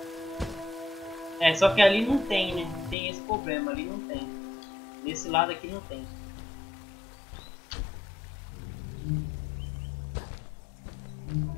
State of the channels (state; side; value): drops out; right; at 3.0 s